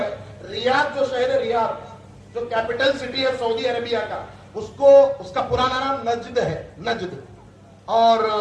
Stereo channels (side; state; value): both; identical; correlation 1.00